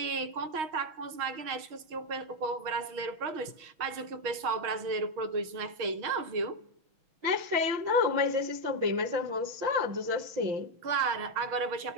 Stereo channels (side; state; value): left; late; 6.4 ms